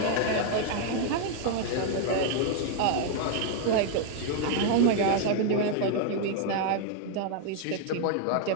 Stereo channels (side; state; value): both; different; correlation 0.00